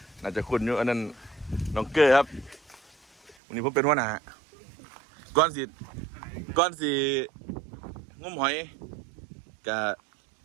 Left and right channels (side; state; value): left; drops out; at 3.4 s